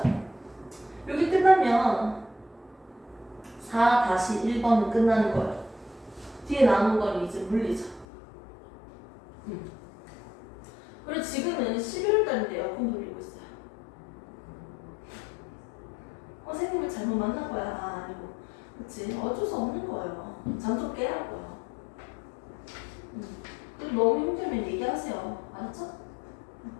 여기 끝나면 4-1번은 끝나는 거예요. 뒤에 남은 건 이제 물리죠. 그리고 지금은 11월달인데 에어컨 돌리고 있어요. 선생님을 잘못 만난 거야? 아니고. 그치? 어쩔 수 없는 거예요. 잠 좀 깨라고요. 그리고 너무 힘들면 얘기하세요. 알았죠?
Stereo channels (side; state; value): right; drops out; at 8.1 s